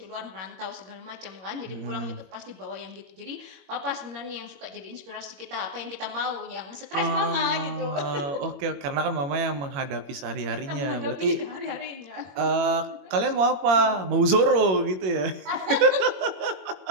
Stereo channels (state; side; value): late; left; 21 ms